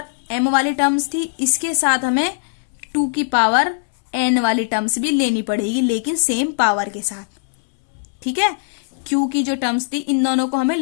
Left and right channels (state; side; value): silent; right; 66 dB below the other